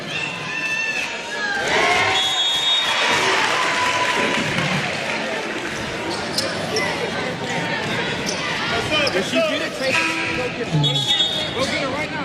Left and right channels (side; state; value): both; identical; correlation 1.00